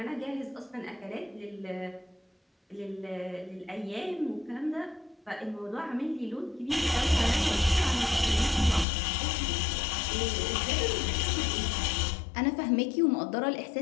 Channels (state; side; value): drops out; right; at 8.8 s